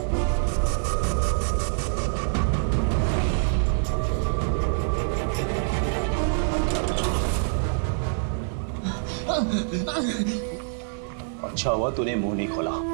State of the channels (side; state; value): left; silent; digital silence